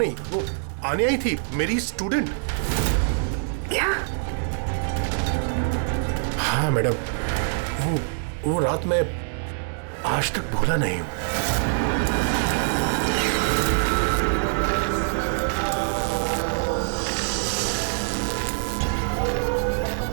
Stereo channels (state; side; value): silent; left; digital silence